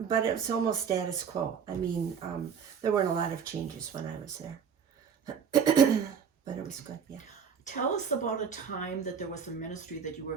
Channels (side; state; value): left; quieter; 7.1 dB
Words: it was almost status quo. I mean, there weren't a lot of changes when I was there. But it was good, yeah. Tell us about a time that there was a ministry that you were